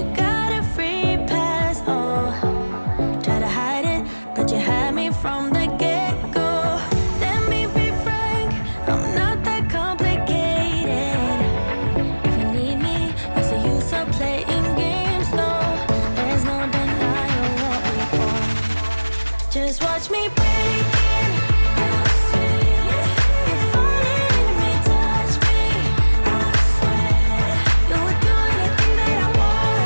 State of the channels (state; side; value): inverted; both; correlation -1.00